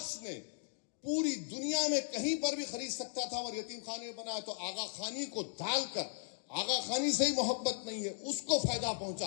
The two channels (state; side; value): silent; right; digital silence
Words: نے پوری دنیا میں کہیں پر بھی خرید سکتا تھا اور یتیم خانے بنایا. تو آغا خانی کو ڈال کر, آغا خانی سے ہی محبت نہیں ہے, اس کو فائدہ